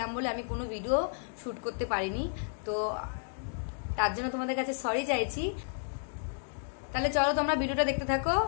বলে আমি কোনো ভিডিও শ্যুট করতে পারিনি। তো তার জন্য তোমাদের কাছে সরি চাইছি। তাহলে চলো তোমরা ভিডিওটা দেখতে থাকো।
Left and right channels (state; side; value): silent; right; digital silence